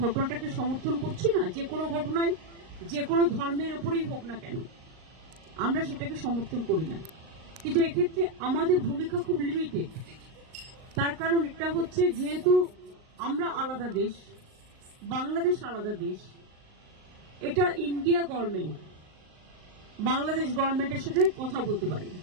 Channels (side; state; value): left; late; 38 ms